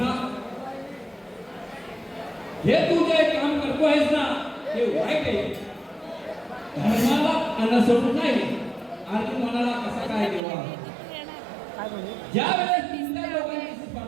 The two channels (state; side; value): drops out; left; at 10.4 s